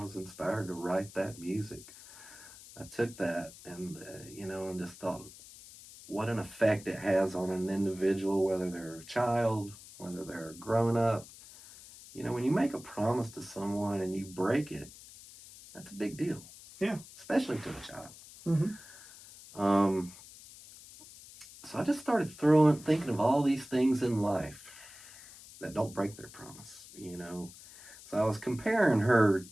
was inspired to write that music. I took that and, and just thought what an effect it has on an individual, whether they're a child, whether they're a grown up. When you make a promise to someone and you break it, that's a big deal. Yeah. Especially to a child. Mm-hmm. So I just started thinking of all these things in life that don't break their promise, So I was comparing her.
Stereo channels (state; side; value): noise; left; hiss, 18 dB below the sound